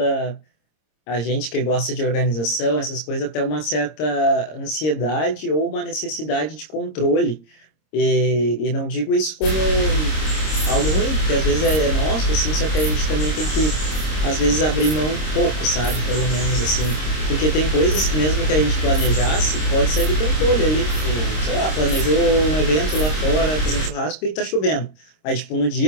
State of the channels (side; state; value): right; late; 26 ms